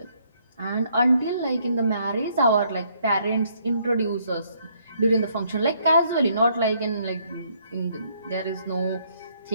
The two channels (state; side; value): inverted; both; correlation -0.69